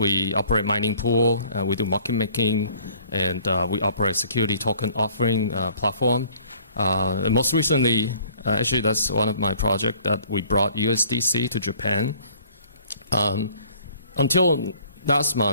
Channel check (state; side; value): inverted; both; correlation -0.55